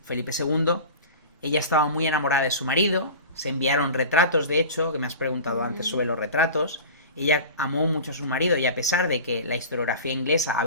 Felipe II. Ella estaba muy enamorada de su marido, se enviaron retratos, de hecho, que me has preguntado antes sobre los retratos. Ella amó mucho a su marido y a pesar de que la historiografía inglesa ha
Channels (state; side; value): inverted; both; correlation -0.34